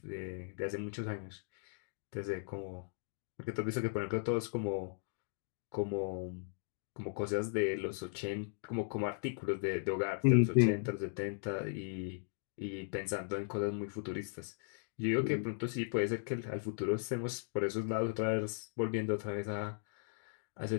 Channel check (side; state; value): right; silent; digital silence